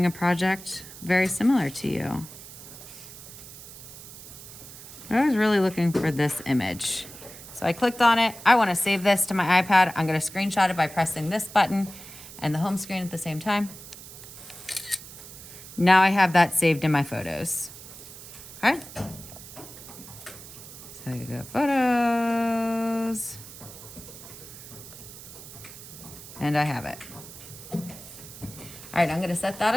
a project very similar to you. I was really looking for this image. So I clicked on it. I want to save this to my iPad. I'm going to screenshot it by pressing this button and the home screen at the same time. Now I have that saved in my photos. Okay. So you go photos. And I have it. All right, I'm going to set that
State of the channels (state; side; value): noise; right; hiss, 15 dB below the sound